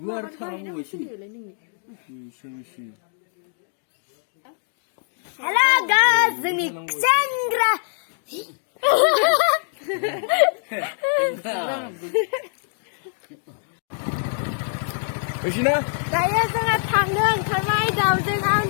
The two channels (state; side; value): silent; right; digital silence